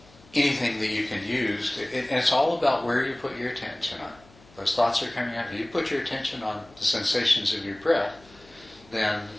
anything that you can use, and it's all about where you put your attention on. Those thoughts are coming out. If you put your attention on the sensations of your breath, then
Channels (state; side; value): noise; left; hum, 26 dB below the sound